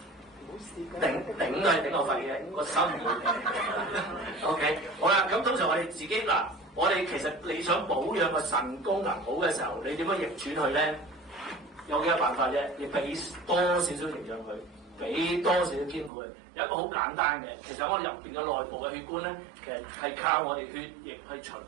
頂都係頂我肺嘅，個心唔會。OK， 好啦，咁通常我哋自己嗱，我哋其實你想保養個腎功能好嘅時候，你點樣逆轉佢咧？有幾個辦法啫，你俾多少少營養佢，俾多少少兼顧佢。有一個好簡單嘅，其實我哋入邊嘅內部嘅血管咧，其實係靠我哋血液去循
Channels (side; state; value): left; drops out; at 16.1 s